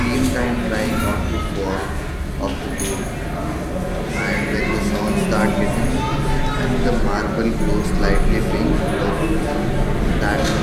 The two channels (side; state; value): both; identical; correlation 1.00